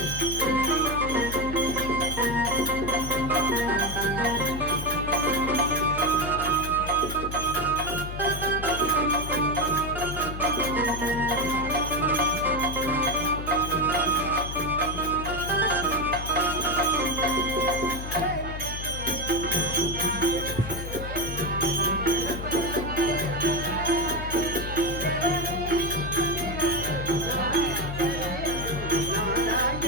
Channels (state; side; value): noise; left; hum, 7 dB below the sound